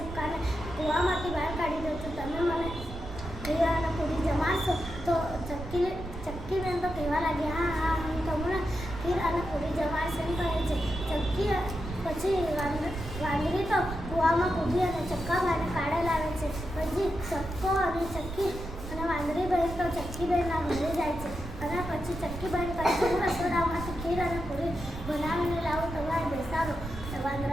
કૂવામાંથી બહાર કાઢી દઉં છું, તમે મને ખીર અને પૂરી જમાડશો? તો ચક્કીબેન તો કહેવા લાગી, હા, હું તમને ખીર અને પૂરી જમાડીશ એમ કહે છે. પછી વાંદરી તો કૂવામાં કૂદી અને ચક્કાભાઈને કાઢે લાવે છે. પછી ચક્કો અને ચક્કી અને વાંદરી બહેન તો ચક્કીબેનના ઘરે જાય છે અને પછી ચક્કીબેન કહે છે, હું રસોડામાંથી ખીર અને પૂરી બનાવીને લાવું, તમારે બેસાડો.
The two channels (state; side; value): noise; right; rumble, 9 dB below the sound